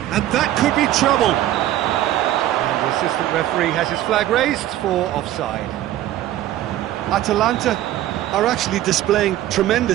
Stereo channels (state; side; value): quieter; left; 13.5 dB